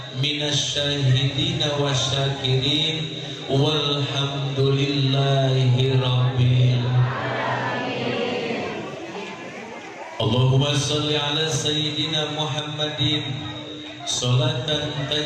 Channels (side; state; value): both; identical; correlation 1.00